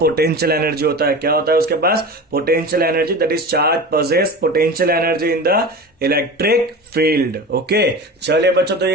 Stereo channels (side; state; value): both; normal; correlation 0.31